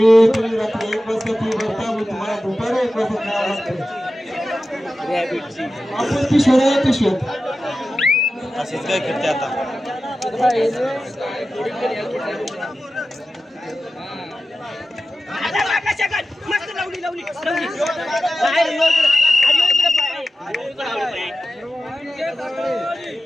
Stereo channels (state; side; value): normal; both; correlation 0.93